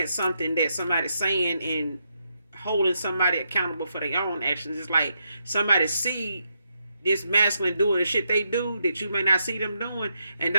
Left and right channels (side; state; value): both; inverted; correlation -0.81